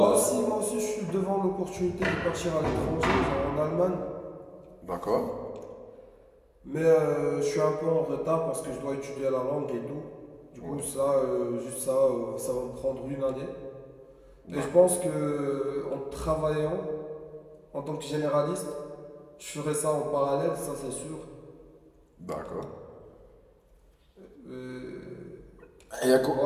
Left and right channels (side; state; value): both; identical; correlation 1.00